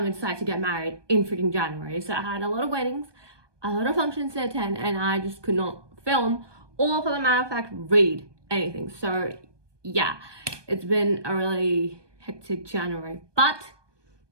decided to get married in freaking January. So I had a lot of weddings, a lot of functions to attend, and I just could not film or, for the matter of fact, read anything. So yeah, it's been a really hectic January. But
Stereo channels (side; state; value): left; late; 1.2 ms